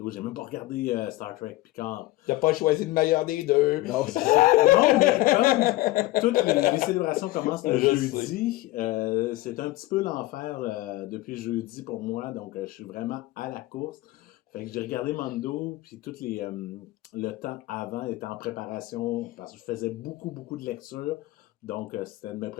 J'ai même pas regardé Star Trek Picard. T'as pas choisi le meilleur des deux. Non, c'est ça. Non, mais comme toutes les célébrations commencent le Je jeudi, c'est un petit peu l'enfer depuis jeudi pour moi, donc je suis vraiment à la course. Fait que j'ai regardé Mando, puis le temps avant était en préparation, parce que je faisais beaucoup de lectures, donc c'était de me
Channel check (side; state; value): right; quieter; 18.4 dB